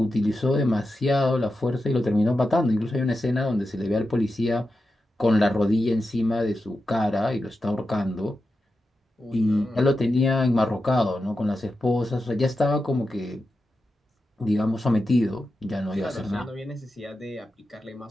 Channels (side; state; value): both; normal; correlation 0.90